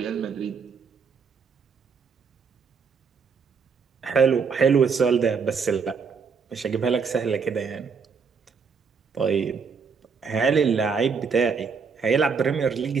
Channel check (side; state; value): left; quieter; 5.6 dB